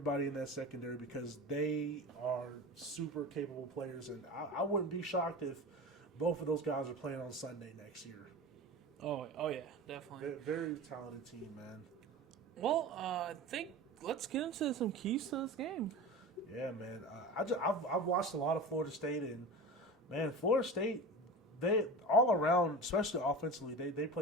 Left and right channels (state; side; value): normal; both; correlation 0.31